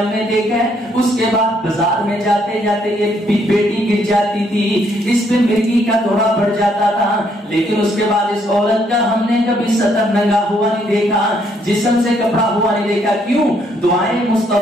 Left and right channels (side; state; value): both; normal; correlation 0.70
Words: ہم نے دیکھا ہے اس کے بعد بازار میں جاتے جاتے یہ بیٹی گر جاتی تھی, اس پہ مرگی کا دورہ بڑھ جاتا تھا, لیکن اس کے بعد اس عورت کا ہم نے کبھی سطر ننگا ہوا نہیں دیکھا, جسم سے کپڑا ہوا نہیں دیکھا. کیوں؟ دعائیں